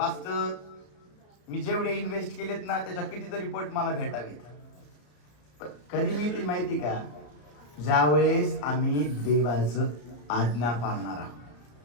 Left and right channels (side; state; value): right; late; 34 ms